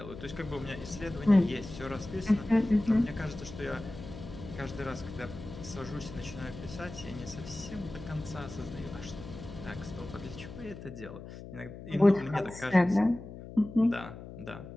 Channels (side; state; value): left; noise; hum, 13 dB below the sound